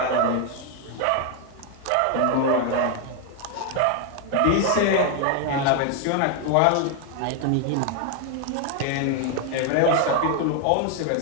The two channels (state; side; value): different; both; correlation 0.01